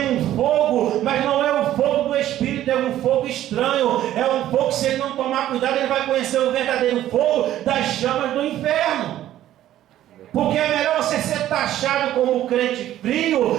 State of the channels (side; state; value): left; quieter; 12.9 dB